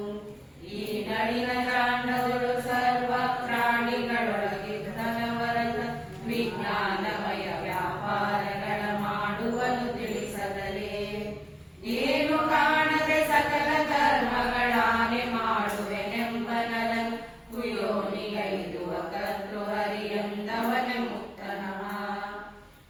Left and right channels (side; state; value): both; identical; correlation 1.00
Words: ಈ ನಳಿನ ಜಾಂಡಗಳು ಸರ್ವ ಪ್ರಾಣಿಗಳೊಳಗಿದ್ದನವರನ್ನ ವಿಜ್ಞಾನಮಯ ವ್ಯಾಪಾರಗಳ ಮಾಡುವನು ತಿಳಿಸದಲೇ ಏನು ಕಾಣದೆ ಸಕಲ ಕರ್ಮಗಳಾನೆ ಮಾಡುವೆನೆಂಬನರನ್ನು ಕುಯೋನಿಗೈದುವ ಕರ್ತೃ ಹರಿಯಂದವನ ಮುಕ್ತನಃ